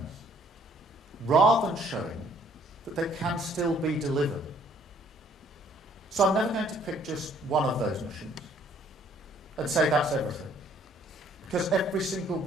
rather than showing that they can still be delivered. So I'm never going to pick just one of those missions and say that's everything, because every single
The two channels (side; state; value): both; normal; correlation 0.62